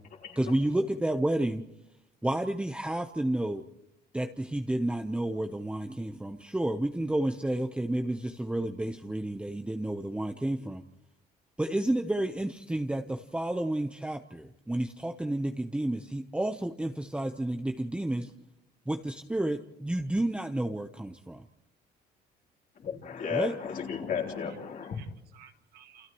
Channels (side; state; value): both; normal; correlation 0.93